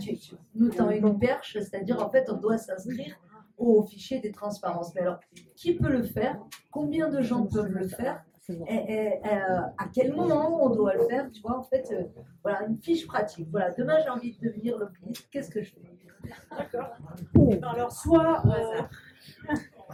nous tends une perche, c'est-à-dire, en fait, on doit s'inscrire au fichier des transparences. Mais alors, qui peut le faire? Combien de gens peuvent le faire? Et à quel moment on doit le faire? Tu vois, en fait, voilà, une fiche pratique. Voilà, demain, j'ai envie de devenir lobbyiste. Qu'est-ce que je fais? D'accord. Alors, soit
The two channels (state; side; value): identical; both; correlation 1.00